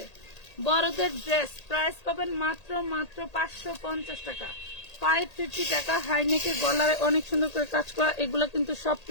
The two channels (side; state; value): right; late; 1.8 ms